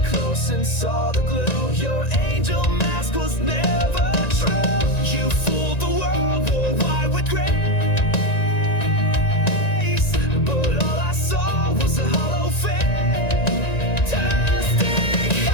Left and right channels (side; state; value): right; late; 1.9 ms